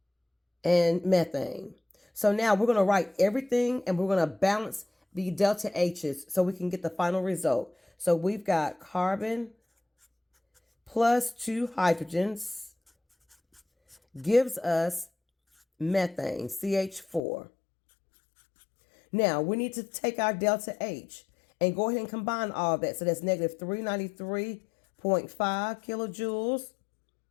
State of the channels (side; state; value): right; drops out; at 17.2 s